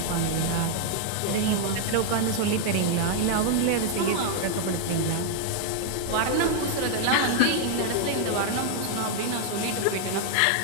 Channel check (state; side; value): different; both; correlation 0.00